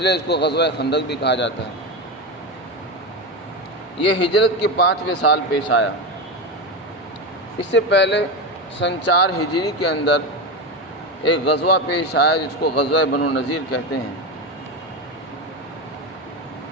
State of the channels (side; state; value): both; normal; correlation 0.17